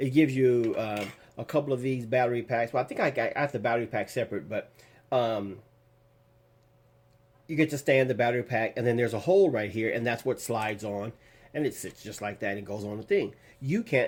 gives you a couple of these battery packs. Well, I think I got the battery pack separate, but you get to stand the battery pack, and then there's a hole right here, and that's what slides on, and it sits just like that and goes on the thing. You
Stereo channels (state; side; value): identical; both; correlation 1.00